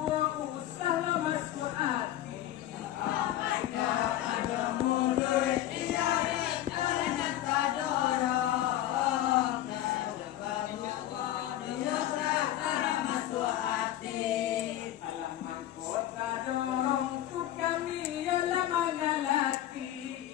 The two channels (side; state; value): right; quieter; 13.1 dB